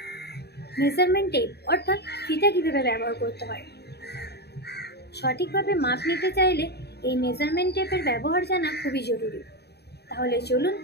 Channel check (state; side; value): late; right; 0.48 ms